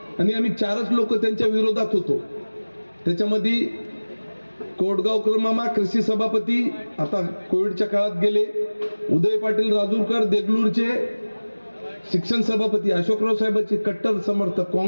आणि आम्ही 4च लोक त्यांच्या विरोधात होतो. त्याच्यामध्ये कोटगावकर मामा कृषी सभापती आता कोविडच्या काळात गेले, उदय पाटील राजूरकर देगलूरचे शिक्षण सभापती, अशोकराव साहेबांचे कट्टर समर्थक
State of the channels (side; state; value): both; inverted; correlation -1.00